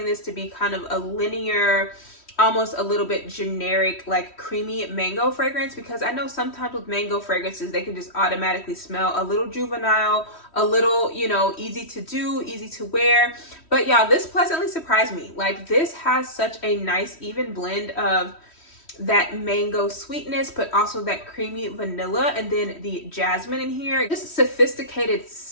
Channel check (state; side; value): late; right; 3.1 ms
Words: this to be kind of a linear, almost a little bit generic, like creamy mango fragrance, because I know sometimes with mango fragrances, they can just automatically smell a little juvenile, a little, you know, easy to do, easy to wear. But y'all, this pleasantly surprised me. Like, this has such a nice even blend of that mango sweetness, but also that creamy vanilla, and then the jasmine in here. Just sophisticated